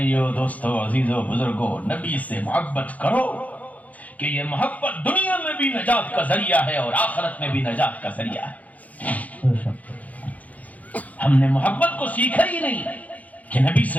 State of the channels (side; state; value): right; late; 0.074 ms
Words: دوستو، عزیزو، بزرگو، نبی سے محبت کرو، کہ یہ محبت دنیا میں بھی نجات کا ذریعہ ہے اور آخرت میں بھی نجات کا ذریعہ ہے۔ ہم نے محبت کو سیکھا ہی نہیں کہ نبی